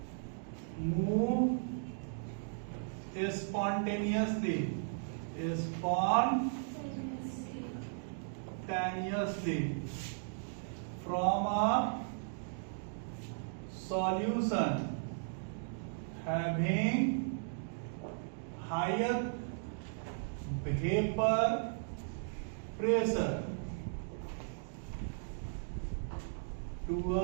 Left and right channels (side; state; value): left; silent; digital silence